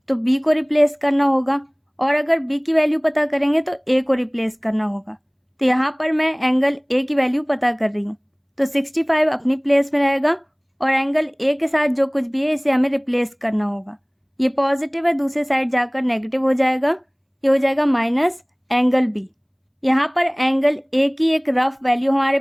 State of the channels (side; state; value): both; identical; correlation 1.00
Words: तो B को रिप्लेस करना होगा और अगर B की वैल्यू पता करेंगे तो A को रिप्लेस करना होगा। तो यहाँ पर मैं एंगल A की वैल्यू पता कर रही हूँ तो 65 अपनी प्लेस में रहेगा और एंगल A के साथ जो कुछ भी है इसे हमें रिप्लेस करना होगा। ये पॉजिटिव है, दूसरे साइड जाकर नेगेटिव हो जाएगा, ये हो जाएगा माइनस एंगल B। यहाँ पर एंगल A की एक रफ वैल्यू हमारे